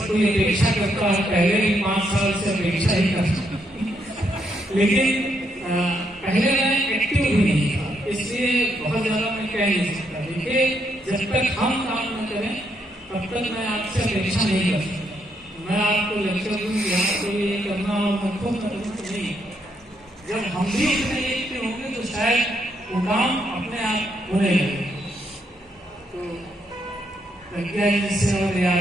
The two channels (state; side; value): normal; both; correlation 0.76